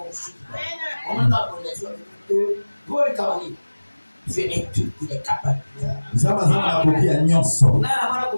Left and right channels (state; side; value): inverted; both; correlation -1.00